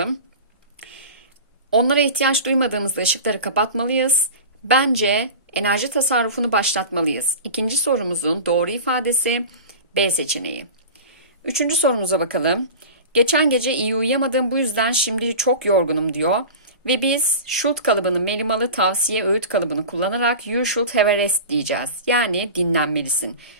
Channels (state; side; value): inverted; both; correlation -0.33